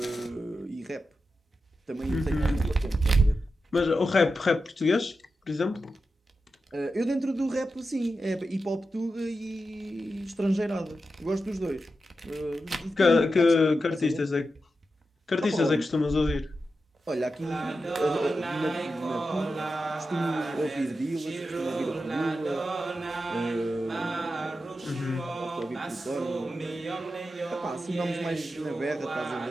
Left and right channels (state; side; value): normal; both; correlation 0.90